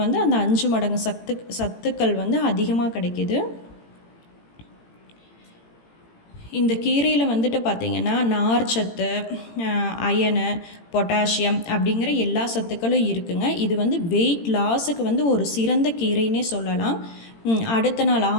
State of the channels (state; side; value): late; right; 18 ms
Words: வந்து அந்த 5 மடங்கு சத்துக்கள் வந்து அதிகமாக கிடைக்கிது. இந்த கீரையில் வந்துட்டு பார்த்திங்கன்னா நார்ச்சத்து, அயனு, பொட்டாசியம் அப்படிங்கிற எல்லா சத்துக்களும் இருக்குங்க. இது வந்து வெயிட் லாஸுக்கு வந்து ஒரு சிறந்த கீரைன்னே சொல்லலாம். அடுத்த நாள்